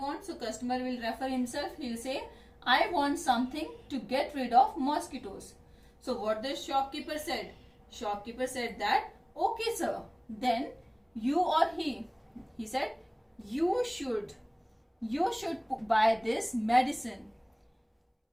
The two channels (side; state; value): both; identical; correlation 1.00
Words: so customer will refer himself. He will say, I want something to get rid of mosquitoes. So what the shopkeeper said? Shopkeeper said that, okay sir, then you or he said, you should buy this medicine.